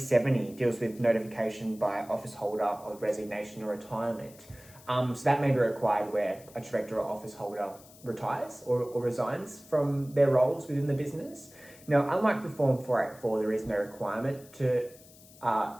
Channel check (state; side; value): noise; left; hiss, 23 dB below the sound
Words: deals with notification by office holder of resignation or retirement. So that may be required where a director or office holder retires or resigns from their roles within the business. Now, unlike the Form 484, there is no requirement to